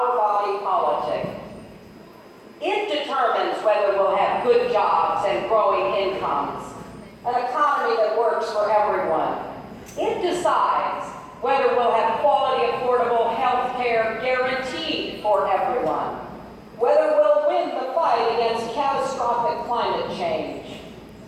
body politic. It determines whether we'll have good jobs and growing incomes, an economy that works for everyone. It decides whether we'll have quality, affordable health care guaranteed for everyone, whether we'll win the fight against catastrophic climate change.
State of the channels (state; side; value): identical; both; correlation 1.00